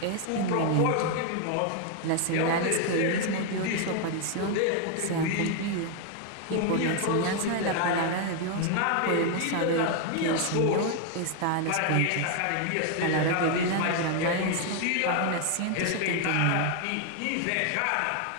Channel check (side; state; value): both; different; correlation 0.01